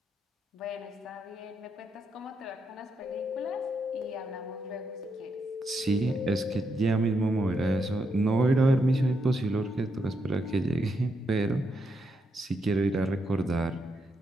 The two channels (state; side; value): normal; both; correlation 0.80